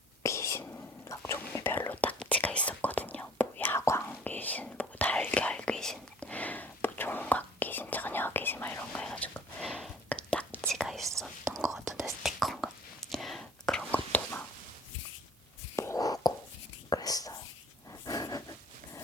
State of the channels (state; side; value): normal; both; correlation 0.52